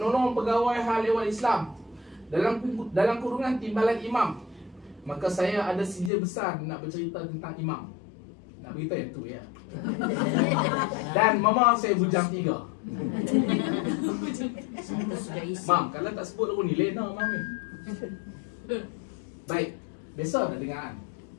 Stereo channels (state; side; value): drops out; right; at 6.1 s